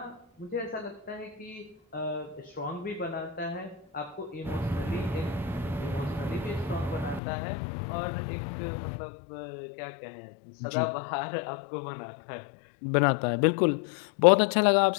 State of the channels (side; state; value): right; drops out; at 7.2 s